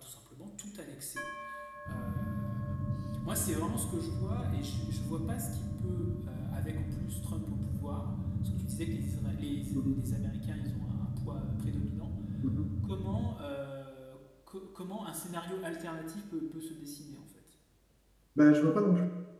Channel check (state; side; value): identical; both; correlation 1.00